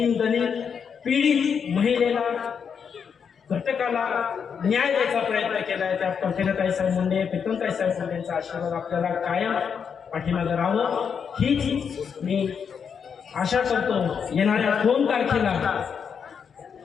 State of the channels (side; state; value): right; quieter; 6.8 dB